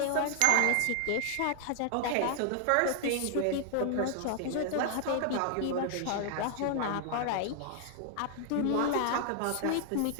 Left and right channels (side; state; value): both; different; correlation 0.00